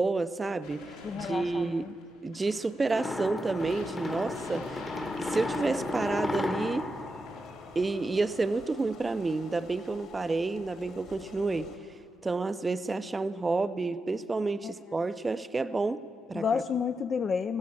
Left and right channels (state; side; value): normal; both; correlation 0.88